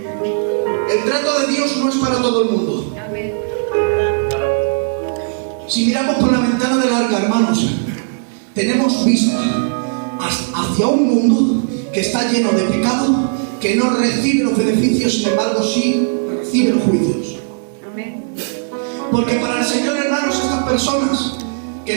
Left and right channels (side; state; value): left; silent; digital silence